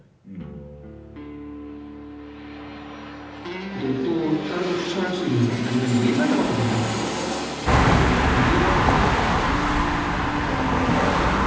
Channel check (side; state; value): both; identical; correlation 1.00